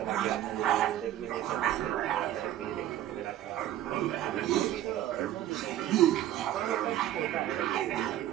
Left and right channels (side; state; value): left; quieter; 12.7 dB